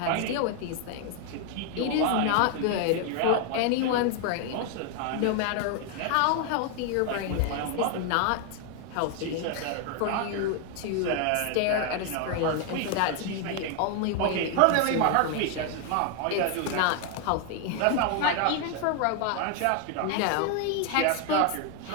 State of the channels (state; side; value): different; both; correlation 0.00